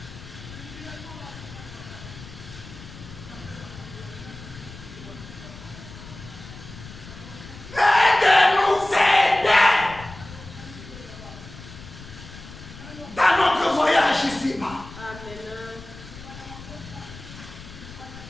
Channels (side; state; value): left; noise; rumble, 15 dB below the sound